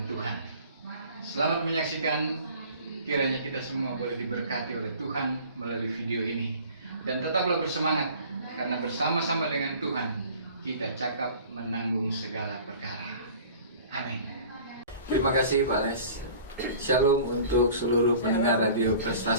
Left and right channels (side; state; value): both; inverted; correlation -0.46